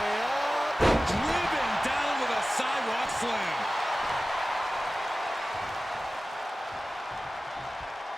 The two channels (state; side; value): normal; both; correlation 0.96